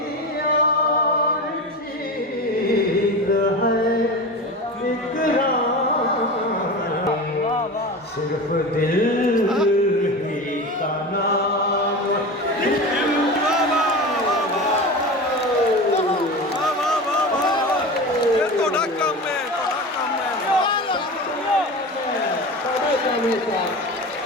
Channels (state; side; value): normal; both; correlation 0.28